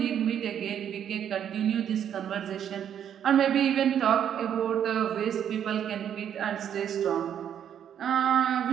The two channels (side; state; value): left; quieter; 9.2 dB